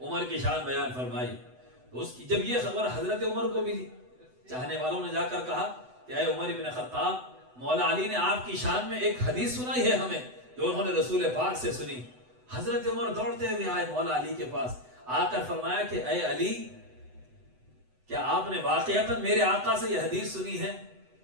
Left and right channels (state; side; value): late; left; 8.0 ms